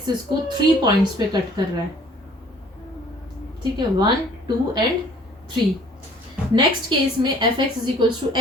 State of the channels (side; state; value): both; normal; correlation 0.55